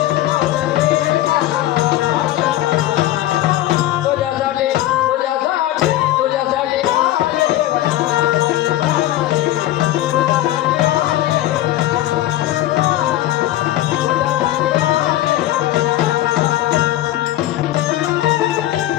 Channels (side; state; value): right; quieter; 14.5 dB